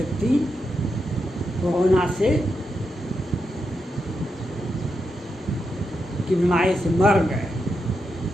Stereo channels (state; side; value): normal; both; correlation 0.85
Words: कोरोना से की बीमारी से मर गए।